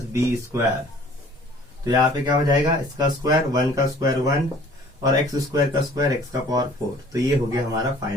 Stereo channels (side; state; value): both; normal; correlation 0.52